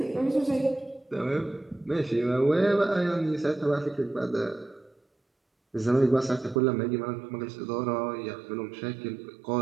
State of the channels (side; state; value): left; drops out; at 6.6 s